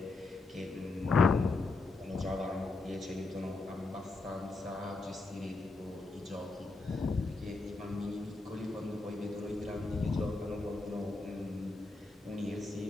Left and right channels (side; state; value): right; quieter; 3.5 dB